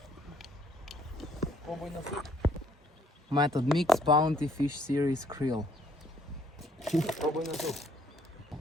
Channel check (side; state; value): both; normal; correlation 0.64